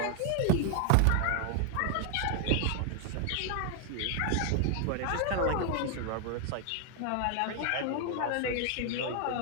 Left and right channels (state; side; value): different; both; correlation 0.00